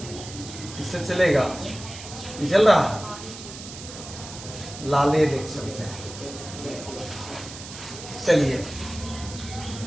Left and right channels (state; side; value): noise; right; hiss, 13 dB below the sound